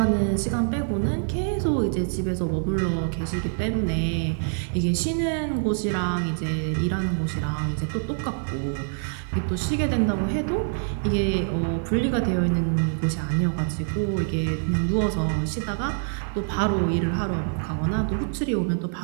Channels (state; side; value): silent; left; digital silence